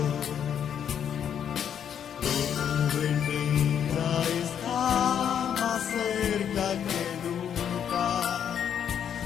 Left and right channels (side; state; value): right; quieter; 8.7 dB